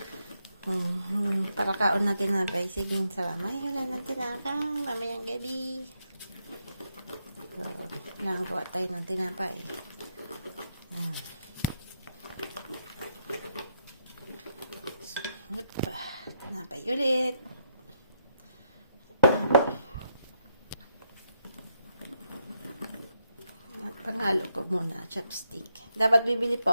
Para kaon na tinapay. Sige, salamat. Wala na tinapay. Mamayang gabi. So, nakagawa tayo ng tinapay. Ayan. Tinapay ulit. Panghalo ko muna, chopstick. Dapat bibili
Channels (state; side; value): inverted; both; correlation -0.79